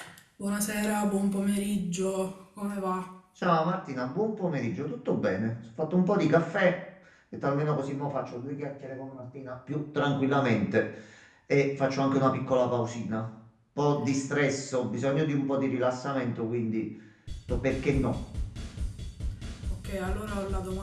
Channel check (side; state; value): both; identical; correlation 1.00